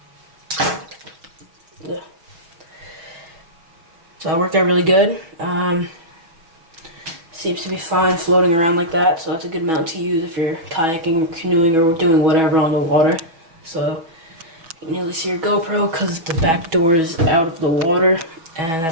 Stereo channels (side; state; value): left; late; 6.2 ms